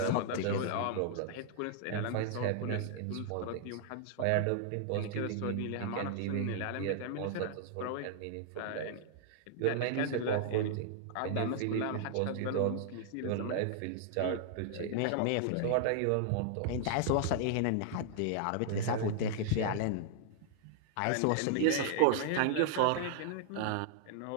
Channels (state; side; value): different; both; correlation -0.01